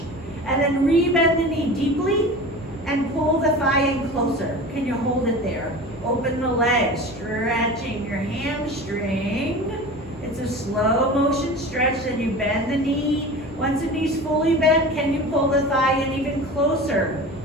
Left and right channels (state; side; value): normal; both; correlation 0.34